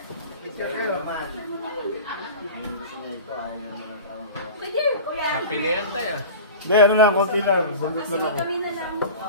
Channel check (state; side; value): inverted; both; correlation -0.35